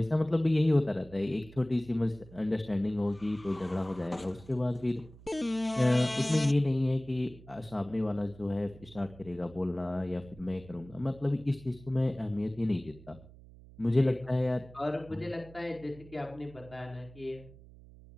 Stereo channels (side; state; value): right; noise; hum, 20 dB below the sound